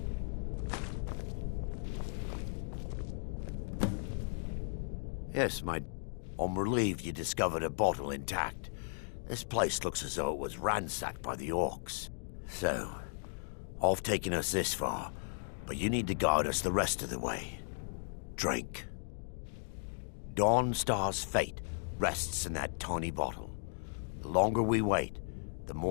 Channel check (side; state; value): right; silent; digital silence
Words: Yes, I'm relieved you discovered a bottle intact. This place looks as though it was ransacked by the orcs. So, I've taken us this far, but you need to guide us the rest of the way. Drink. Dawnstar's fate rests in that tiny bottle. The longer we wait, the